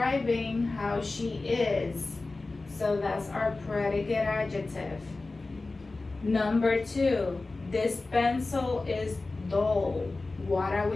how she is. So that's our predicate adjective. Number 2, this pencil is dull. What are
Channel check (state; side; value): quieter; right; 3.4 dB